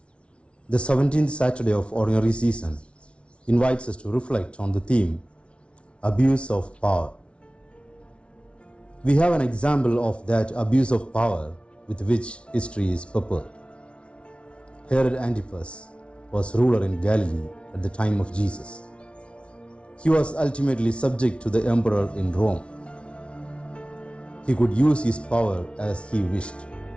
the 17th Saturday of Ordinary Season invites us to reflect on the theme, Abuse of Power. We have an example of that abuse of power with which history is peppered. Herod Antipas was ruler in Galilee at the time of Jesus. He was ultimately subject to the emperor in Rome. He could use his power as he wished,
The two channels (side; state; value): right; late; 0.060 ms